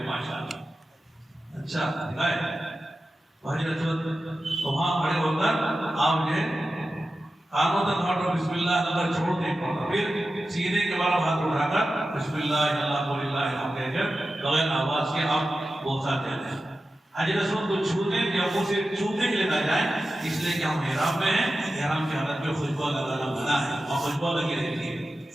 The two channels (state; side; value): normal; both; correlation 0.93